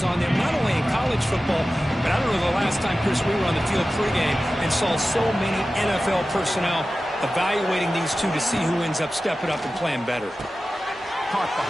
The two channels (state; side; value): normal; both; correlation 0.95